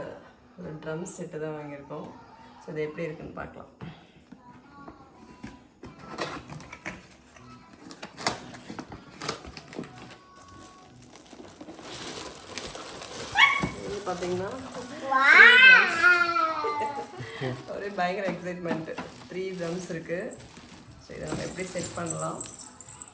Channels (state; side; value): identical; both; correlation 1.00